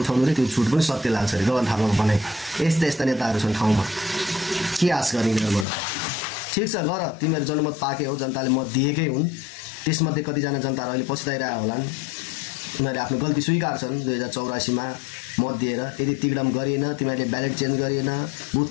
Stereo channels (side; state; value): right; drops out; at 5.7 s